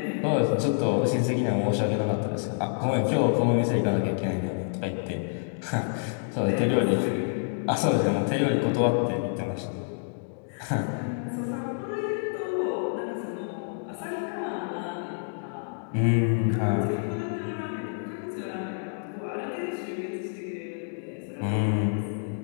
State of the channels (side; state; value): right; silent; digital silence